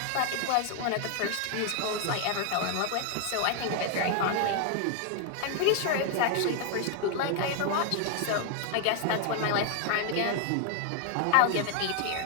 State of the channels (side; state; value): both; different; correlation 0.00